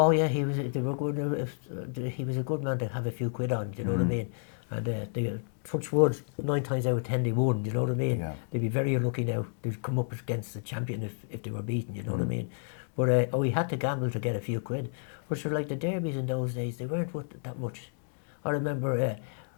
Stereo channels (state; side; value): silent; right; digital silence